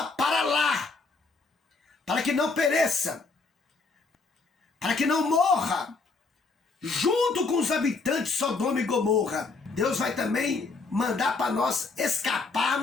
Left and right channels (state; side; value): quieter; right; 4.0 dB